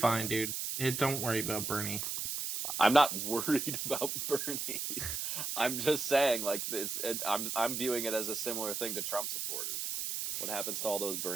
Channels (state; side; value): noise; right; hiss, 3 dB below the sound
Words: dude. Don't worry about Bernie. I'm not worried about Bernie. I'm just saying, like this. I'm viewing it as a similar thing to Trump supporters. What happens to all those